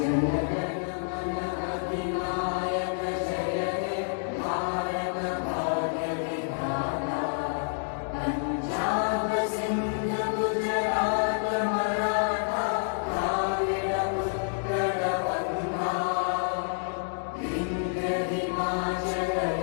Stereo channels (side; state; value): right; silent; digital silence